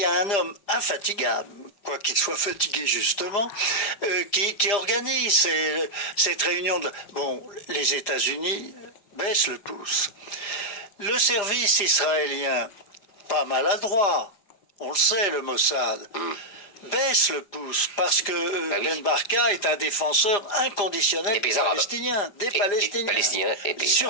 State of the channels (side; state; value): right; late; 5.0 ms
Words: a un homme infatigable, quoi qu'il soit fatigué justement, qui organise cette réunion. Bon, les États-Unis baissent le pouce. Le service israélien, pas maladroit, on le sait, le Mossad, baisse le pouce parce que Ben Barka est un défenseur inconditionnel des Palestiniens. Des Palestiniens.